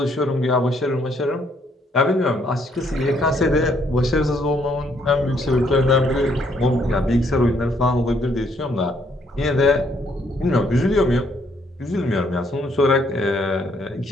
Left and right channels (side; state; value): both; normal; correlation 0.69